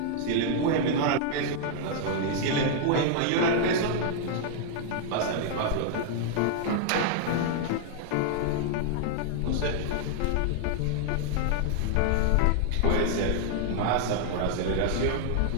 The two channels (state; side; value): different; both; correlation 0.00